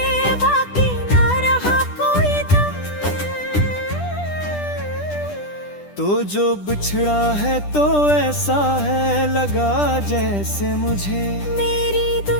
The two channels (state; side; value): late; right; 10 ms